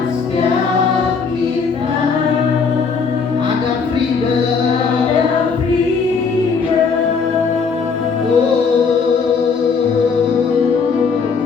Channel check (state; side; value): quieter; right; 5.4 dB